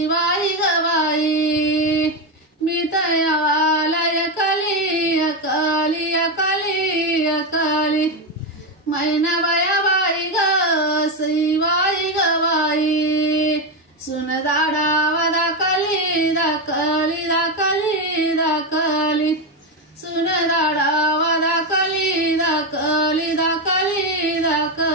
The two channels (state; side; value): normal; both; correlation 0.10